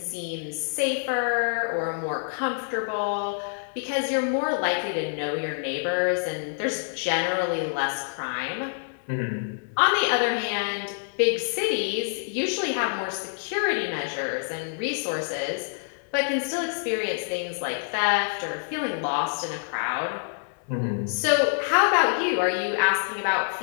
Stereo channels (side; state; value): right; silent; 60 dB below the other